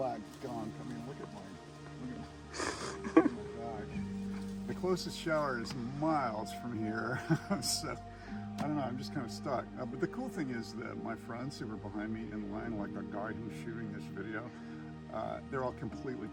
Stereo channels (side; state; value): both; identical; correlation 1.00